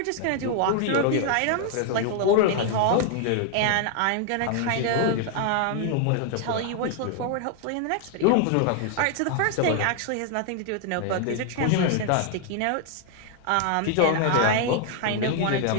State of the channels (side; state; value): both; different; correlation 0.00